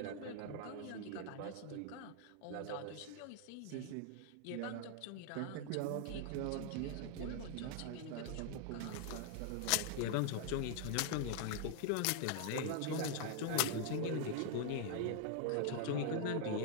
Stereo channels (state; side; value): different; both; correlation 0.00